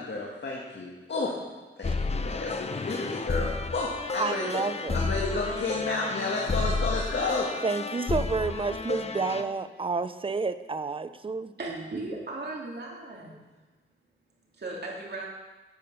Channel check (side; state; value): both; normal; correlation 0.43